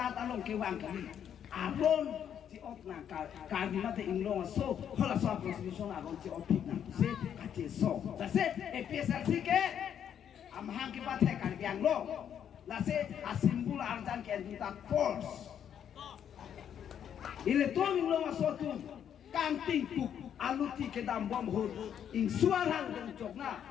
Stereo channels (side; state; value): right; quieter; 9.0 dB